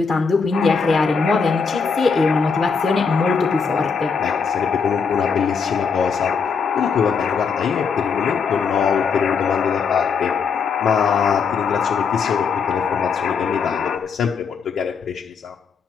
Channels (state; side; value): quieter; right; 5.7 dB